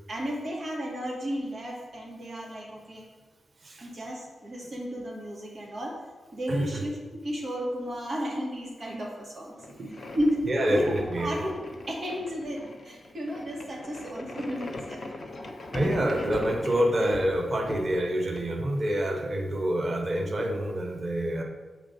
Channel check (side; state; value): both; normal; correlation 0.91